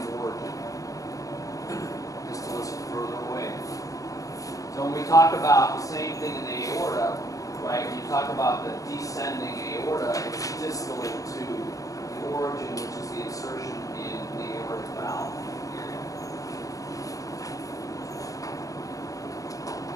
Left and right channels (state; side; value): late; right; 0.16 ms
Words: origin. Distal is further away. So when we talk about the same thing in the aorta, right? When you talk about the descending aorta, it's distal to the origin, which is the insertion in the aortic valve.